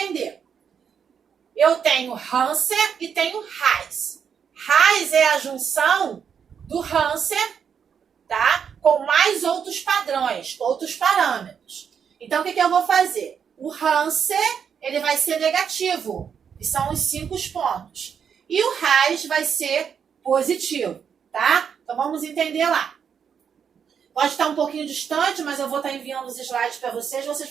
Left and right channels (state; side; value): quieter; left; 7.3 dB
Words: Eu tenho Hansen e tenho Reis. Reis é a junção do Hansen, tá? Com mais outros padrões, outros parâmetros. Então, o que eu vou fazer? O Hansen, ele vai ser negativo, que são os 5 pontos. E o Reis vai ser positivo, tá? Então, vamos entender lá. Pode estar um pouquinho distante, mas eu vou estar enviando os slides para vocês